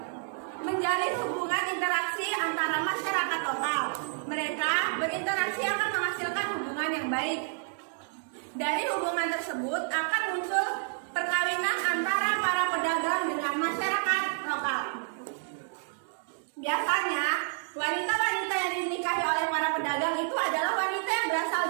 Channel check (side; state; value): left; silent; 58 dB below the other